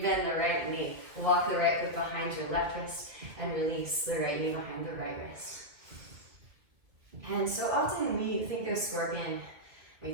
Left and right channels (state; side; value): late; left; 2.4 ms